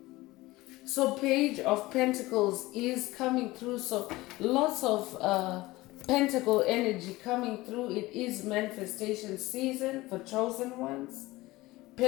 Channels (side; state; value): right; quieter; 19.4 dB